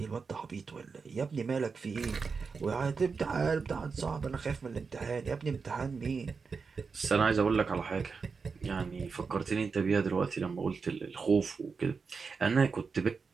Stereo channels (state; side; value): quieter; left; 5.1 dB